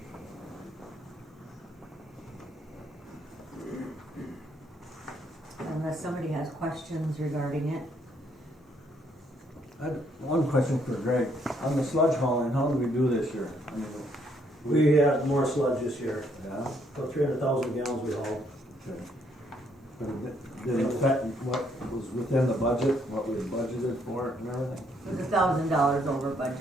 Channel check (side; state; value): both; normal; correlation 0.70